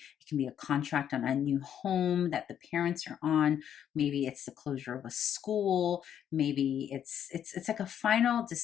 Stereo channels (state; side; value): quieter; right; 9.5 dB